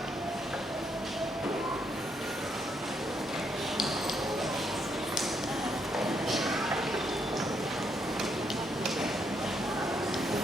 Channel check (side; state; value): both; normal; correlation 0.76